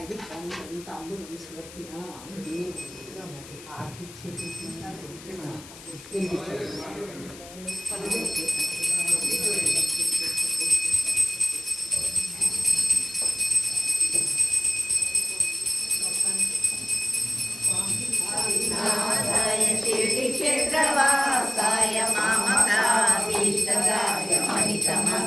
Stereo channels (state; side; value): noise; left; hiss, 17 dB below the sound